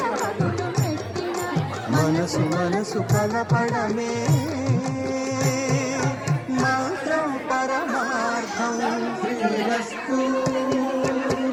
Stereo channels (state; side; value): identical; both; correlation 1.00